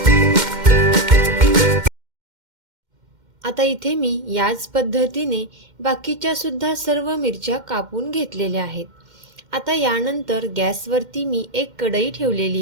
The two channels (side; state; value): left; late; 2.1 ms